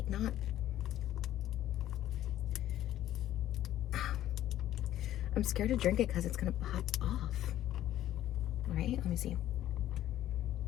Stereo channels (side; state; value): right; quieter; 12.8 dB